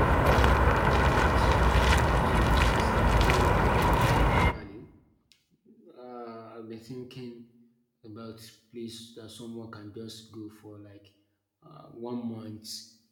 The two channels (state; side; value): identical; both; correlation 1.00